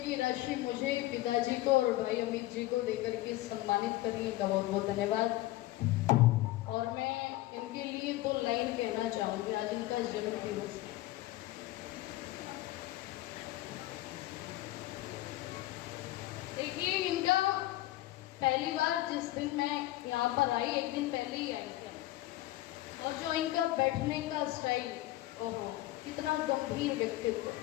राशि मुझे, पिताजी को और भाई अमित जी को देकर के सम्मानित करने का बहुत बहुत धन्यवाद। और मैं इनके लिए 2 लाइन कहना चाहूंगी। आज इनका जन्म दिवस है। देखिए, इनका पहली बार जिस दिन मैं यहाँ पर आई, एक दिन पहले ही आई थी, और जो इनका बैठने का स्टाइल, ओहो कितना गंभीर व्यक्तित्व।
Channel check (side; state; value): right; quieter; 17.0 dB